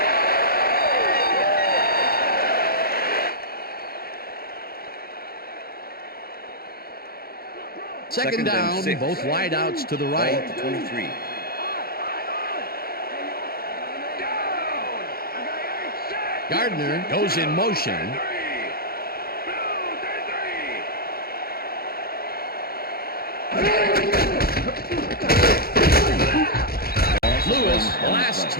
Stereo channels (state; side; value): late; right; 0.44 ms